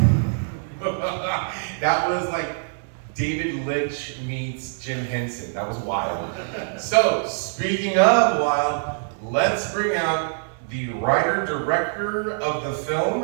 That was like David Lynch meets Jim Henson. That was wild. So, speaking of wild, let's bring out the writer-director of the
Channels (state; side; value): silent; left; 61 dB below the other